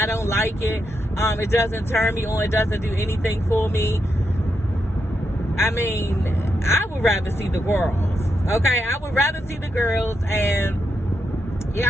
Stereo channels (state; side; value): normal; both; correlation 0.83